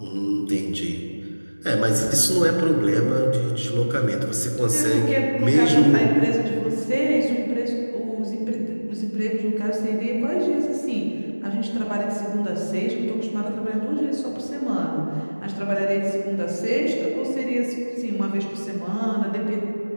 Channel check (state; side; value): inverted; both; correlation -1.00